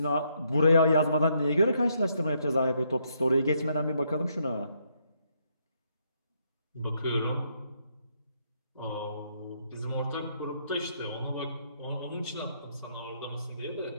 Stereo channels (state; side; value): inverted; both; correlation -0.74